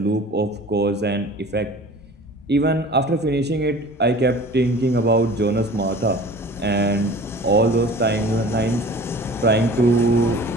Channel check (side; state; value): both; normal; correlation 0.43